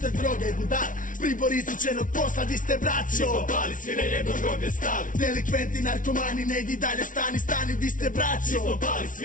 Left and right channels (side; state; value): right; late; 0.38 ms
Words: droge i budal, pribor izučenog posla, di ste braćo? Mi smo pali, svi na jedno groblje stali. Delikventi, narkomani, ne idi dalje, stani, stani, di ste braćo? Mi smo pali,